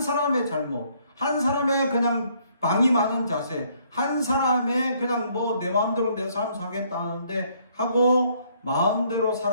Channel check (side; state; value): both; inverted; correlation -0.66